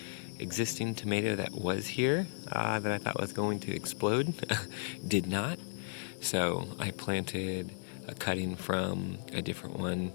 existing tomato that was here that I thought was going to explode did not. So I planted a cutting from a different one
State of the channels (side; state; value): right; silent; digital silence